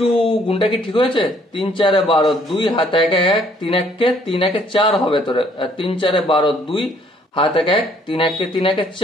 গুণটা কি ঠিক হয়েছে? 3 4 12, 2 হাতে 1 1, 3 1 4 হবে তোর, 3 4 12, 2 হাতে 1 3 1 3 1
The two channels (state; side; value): normal; both; correlation 0.63